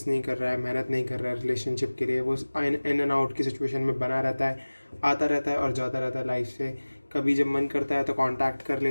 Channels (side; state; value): both; inverted; correlation -1.00